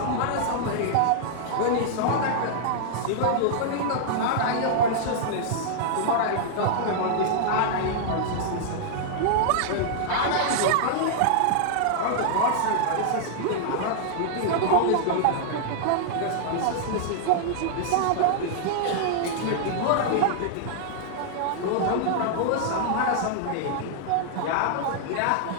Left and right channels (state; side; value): different; both; correlation -0.01